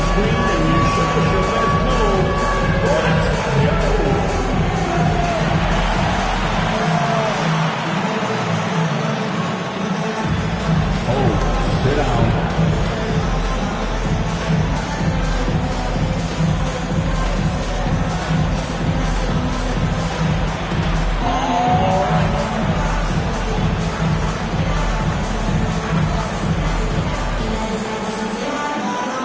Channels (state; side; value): identical; both; correlation 1.00